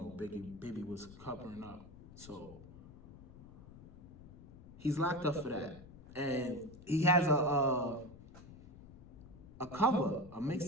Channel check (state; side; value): noise; left; rumble, 17 dB below the sound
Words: Bibby was covering up. So he's locked up for that. And he has a cover, a